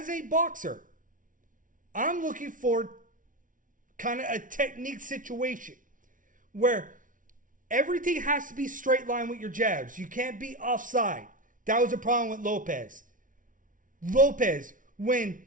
a boxer, I'm looking for kind of a technique situation where everything has to be straight line with your jabs. You can't be offside. That was a problem with Lopez. Lopez, when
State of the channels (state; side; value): late; left; 0.38 ms